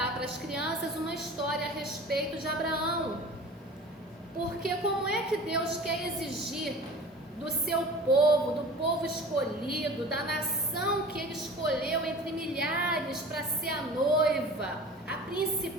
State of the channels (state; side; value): normal; both; correlation 0.39